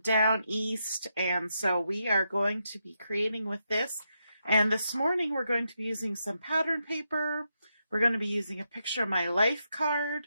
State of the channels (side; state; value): both; inverted; correlation -0.83